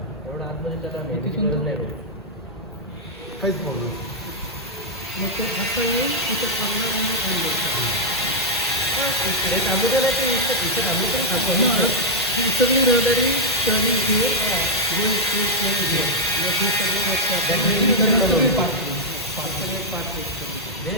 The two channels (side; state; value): both; normal; correlation -0.06